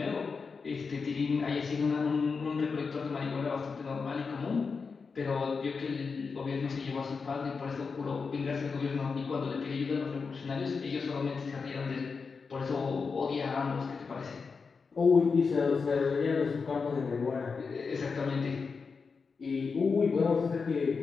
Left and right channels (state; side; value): quieter; right; 5.0 dB